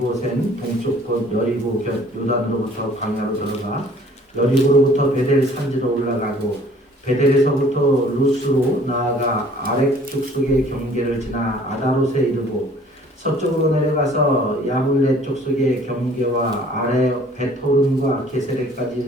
동쪽 곳 여리고 곁 요단으로부터 광야로 들어가 여리고로부터 베델 산지로 올라가고 베델에서부터 루스로 나아가 아렉 족속의 경계를 지나 아다롯에 이르고 서쪽으로 내려가서 야블레 족속의 경계와 아래 베토른과 게세레까지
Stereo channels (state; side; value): normal; both; correlation 0.54